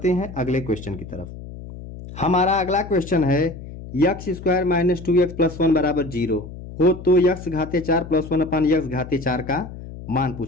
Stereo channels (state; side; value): noise; left; hum, 13 dB below the sound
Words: हैं अगले क्वेश्चन की तरफ। हमारा अगला क्वेश्चन है, x² - 2x + 1 बराबर 0 हो तो x घाते 4 + 1/x घाते 4 का मान